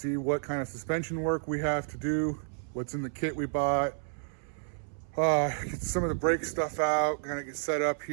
what kind of suspension work we have to do, what's in the kit we bought. Get some of the brake stuff out, kind of get set up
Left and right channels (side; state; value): left; silent; 57 dB below the other